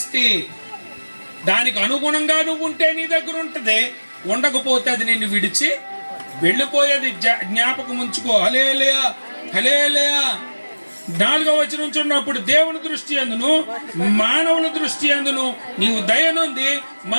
దానికి అనుగుణంగా నువ్వు ఉంటే నీ దగ్గర ఉంటుంది, ఉండకపోతే అది నిన్ను విడిచి వెళ్ళిపోయేది. జ్ఞాపకం ఉంచుకో. హల్లెలూయా, హల్లెలూయా. 4వ వచనం చూడప్పుడు, దేవుని దృష్టి అందును మానవుల దృష్టి అందును నీవు దయనుంది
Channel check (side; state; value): both; inverted; correlation -1.00